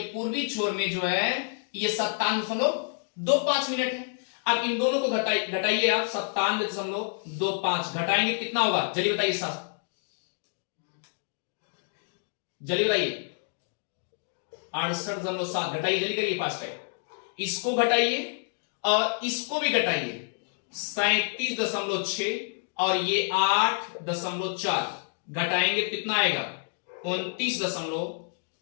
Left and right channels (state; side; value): silent; right; 59 dB below the other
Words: पूर्वी छोर में जो है ये 97.25 मिनट है। अब इन दोनों को घटाइए आप, 97.25 घटाएंगे कितना होगा, जल्दी बताइए साहब, जल्दी बताइए। 68.7 घटाइए, जल्दी करिए, फास्ट टाइम। इसको घटाइए और इसको भी घटाइए, 37.6 और ये 8.4 घटाएंगे कितना आएगा, 29